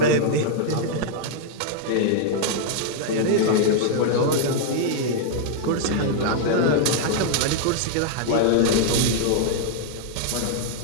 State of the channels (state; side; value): different; both; correlation -0.01